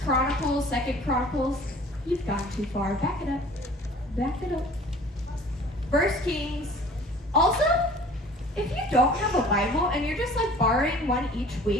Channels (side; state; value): both; normal; correlation 0.48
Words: Chronicles, 2nd Chronicles, you've gone too far. Back it up. Back it up. 1 Kings. Also, if you don't have a Bible and you're just like borrowing one each